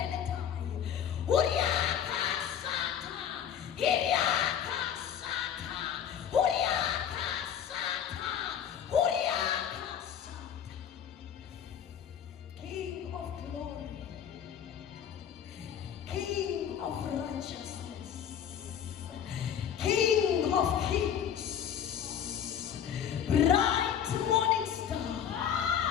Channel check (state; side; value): quieter; right; 8.9 dB